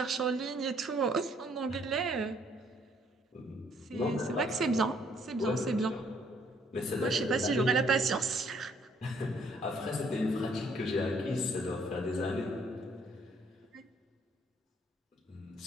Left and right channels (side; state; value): both; normal; correlation 0.65